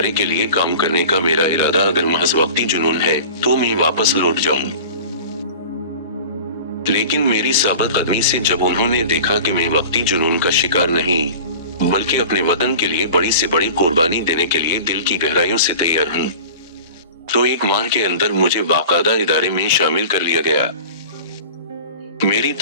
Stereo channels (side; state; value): both; inverted; correlation -0.38